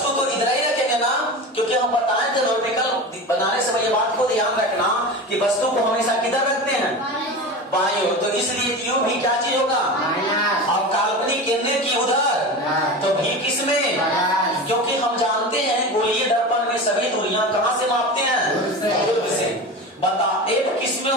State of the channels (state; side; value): normal; both; correlation 0.28